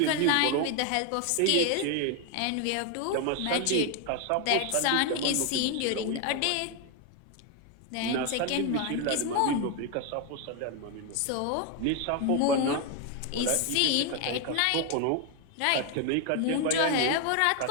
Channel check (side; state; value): both; different; correlation 0.01